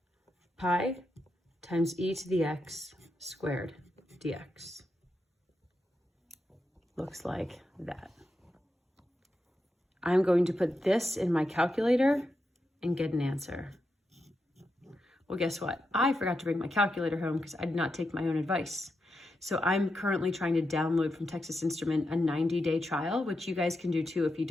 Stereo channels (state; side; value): normal; both; correlation 0.86